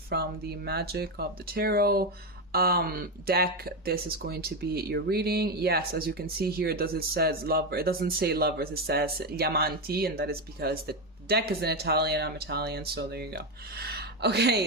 the Magic of the Tarot deck, this is going to be your reading. Yes, as you can see here, it says lover. It doesn't say lovers, it says gli amanti, and that is because the deck is in Italian. I'm Italian, so there you go.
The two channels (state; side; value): normal; both; correlation 0.11